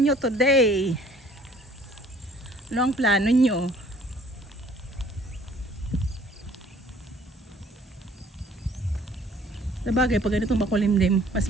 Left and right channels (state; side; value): normal; both; correlation 0.56